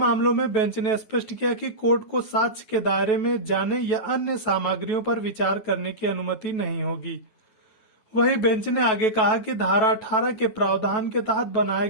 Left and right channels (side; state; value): right; late; 9.3 ms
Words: में बेंच ने स्पष्ट किया कि कोर्ट को साक्ष्य के दायरे में जाने या अन्य सामग्रियों पर विचार करने की अनुमति नहीं होगी। वहीं बेंच ने आगे कहा कि धारा 18 के प्रावधान के तहत बनाए